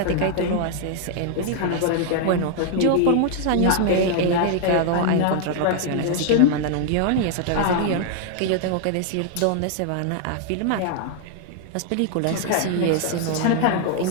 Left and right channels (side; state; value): both; different; correlation 0.00